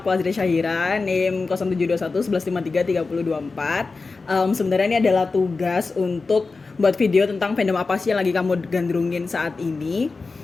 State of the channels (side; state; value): right; quieter; 4.0 dB